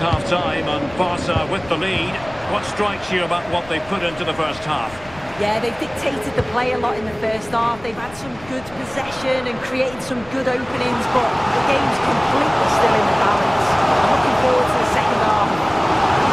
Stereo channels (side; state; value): left; noise; rumble, 21 dB below the sound